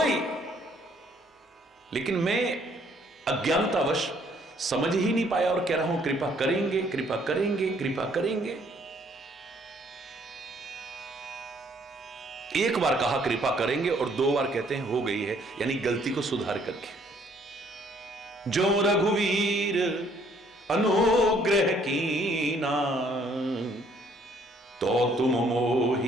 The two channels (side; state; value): both; normal; correlation 0.64